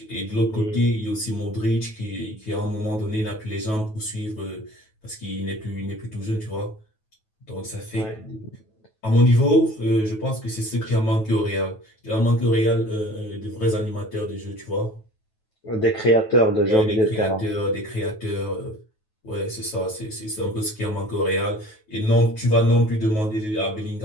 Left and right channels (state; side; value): late; right; 9.3 ms